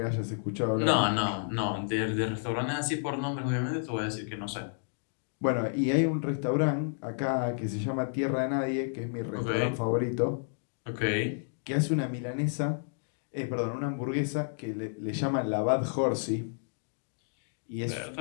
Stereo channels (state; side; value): silent; right; digital silence